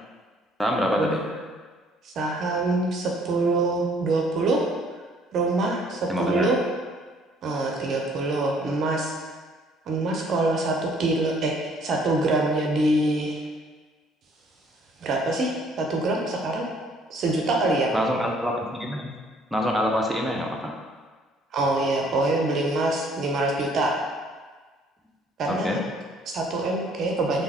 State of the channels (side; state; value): both; normal; correlation 0.61